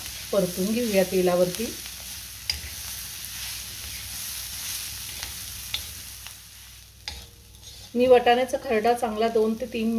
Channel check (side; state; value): both; identical; correlation 1.00